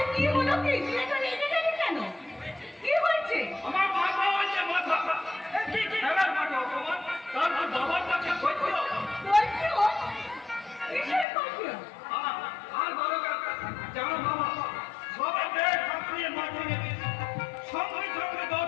কি হলো কি? এটা রেগে গেলি কেন? কি হয়েছে? আমার মাথা হচ্ছে মাথা। কি খেলার মাঠে অপমান, তারপর বাবার কাছে কৈফিয়ত। কৈফিয়ত? কিসের কৈফিয়ত? আর বড় কথা জানো বাবা, সবে পেট ফাটিয়ে মাটিয়ে সঙ্গে সঙ্গে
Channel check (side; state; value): right; drops out; at 11.2 s